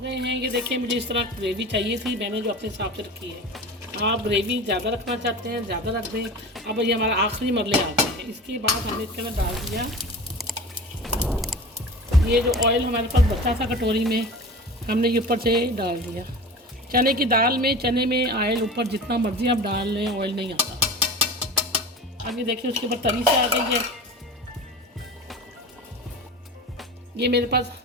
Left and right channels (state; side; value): normal; both; correlation 0.34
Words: हैं। ये देखिए मुझे इस तरह ग्रेवी चाहिए थी, मैंने जो अपने हिसाब से रखी है। आप ग्रेवी ज़्यादा रखना चाहते हैं ज़्यादा रख दें। अब ये हमारा आखिरी मरले आ गए हैं। इसके बाद हमने इसके अंदर डाल दिया ये जो ऑयल हमारे पास बचा था कटोरी में, हमने ये ऊपर से डाल दिया। चने की दाल में, चने में ऑयल ऊपर जितना मर्जी आप डाल लें, ऑयल नहीं आता। अब ये देखिए उसके ऊपर तरी से आ गई है। ये मेरे पास